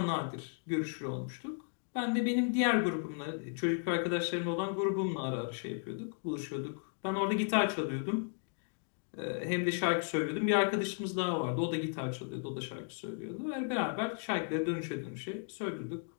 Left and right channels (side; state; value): right; silent; 54 dB below the other